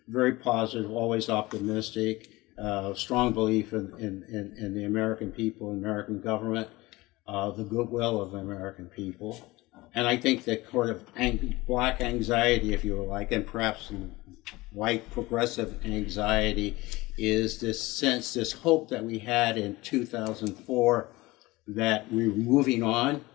very positive, always optimistic, strong belief in the American people, American government, the goodwill of the American people. And I think that sort of black anxiety, if you like, and perhaps white progressive anxiety, is this sense, this hope that we had in 2004 that we're moving on,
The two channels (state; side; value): quieter; right; 20.6 dB